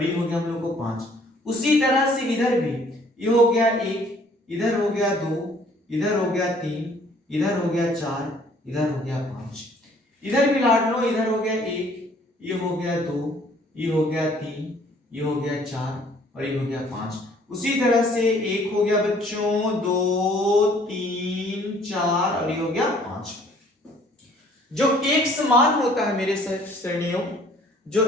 ये हो गया हम लोग को 5। उसी तरह से इधर भी ये हो गया 1, इधर हो गया 2, इधर हो गया 3, इधर हो गया 4, इधर हो गया 5। इधर भी लाडलो इधर हो गया 1, ये हो गया 2, ये हो गया 3, ये हो गया 4 और ये हो गया 5। उसी तरह से 1 हो गया बच्चों, 2, 3, 4 और ये हो गया 5। जो x मान होता है मेरे श्रेणियों, जो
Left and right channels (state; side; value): normal; both; correlation 0.58